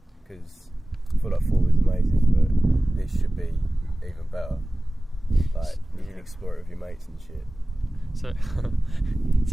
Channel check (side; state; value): both; normal; correlation 0.97